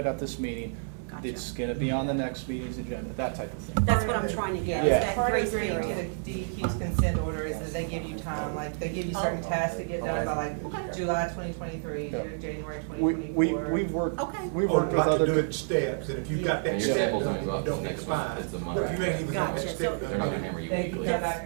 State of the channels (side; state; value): left; silent; 58 dB below the other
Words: at this meeting, Gotcha. it's gonna be on the next meeting's agenda, that type of thing. That's what I'm trying to get, is Yeah. that Part of grace agreeing to period. the DEQ's consent order is that they give you time, like, they give you certain Oh. tasks to get done by like July 2023, January We've 2024. worked, Okay. we've Or worked with like to do other. it in steps, and if you've got that Your step samples done, only you go up don't to get the next month. fine. It's a month. But if you ain't even got that Gotcha. step So- done. They're not gonna hammer you. They can come